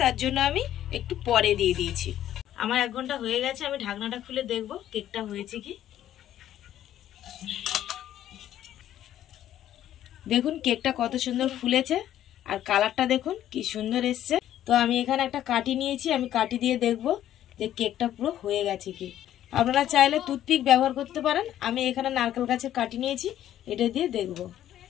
তার জন্য আমি একটু পরে দিয়ে দিয়েছি। আমার 1 ঘন্টা হয়ে গেছে। আমি ঢাকনাটা খুলে দেখবো কেকটা হয়েছে কি। দেখুন কেকটা কত সুন্দর ফুলেছে আর কালারটা দেখুন কি সুন্দর এসছে। তো আমি এখানে একটা কাঠি নিয়েছি, আমি কাঠি দিয়ে দেখবো যে কেকটা পুরো হয়ে গেছে কি। আপনারা চাইলে টুথপিক ব্যবহার করতে পারেন। আমি এখানে নারকেল গাছের কাঠি নিয়েছি, এটা দিয়ে দেখব।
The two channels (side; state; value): right; quieter; 11.9 dB